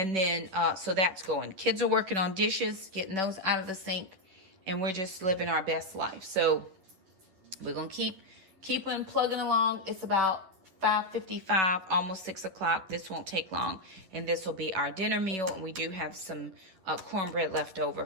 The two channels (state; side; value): late; left; 11 ms